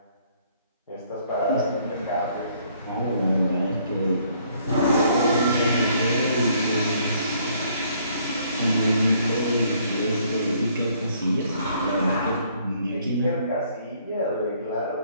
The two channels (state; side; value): inverted; both; correlation -0.64